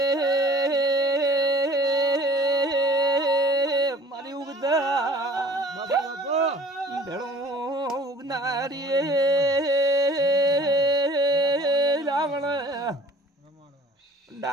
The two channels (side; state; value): both; normal; correlation 0.48